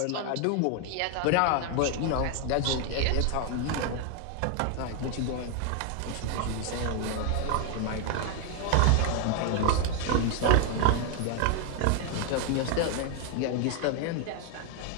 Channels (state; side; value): different; both; correlation 0.00